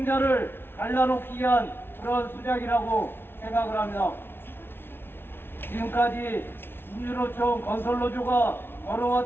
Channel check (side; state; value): right; late; 0.11 ms